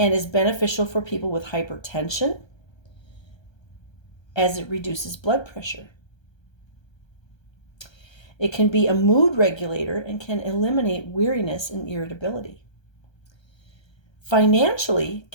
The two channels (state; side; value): late; right; 1.3 ms